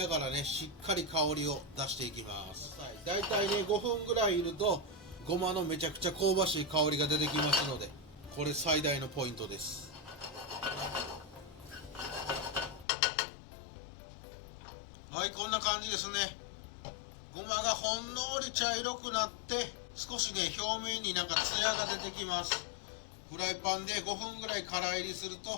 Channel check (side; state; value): right; drops out; at 12.9 s